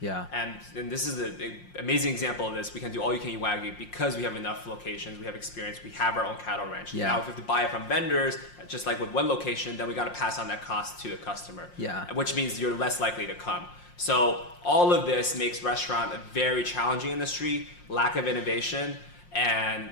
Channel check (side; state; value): right; late; 5.6 ms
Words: Yeah. And this is an amazing example of this. We can do all you can eat Wagyu because we have enough locations, we have experience, we have our own cattle ranch. Yeah. Now, if we have to buy it from vendors, just like with one location, then we got to pass on that cost to the customer. Yeah. Which means you're less likely to come. So all of this makes restaurant a very challenging industry, lack of innovation, and